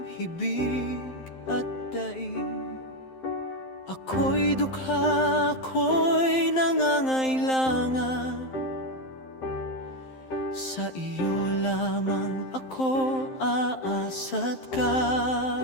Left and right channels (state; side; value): late; right; 11 ms